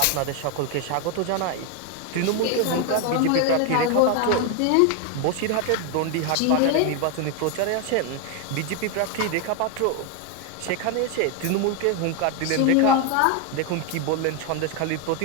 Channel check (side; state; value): both; different; correlation 0.01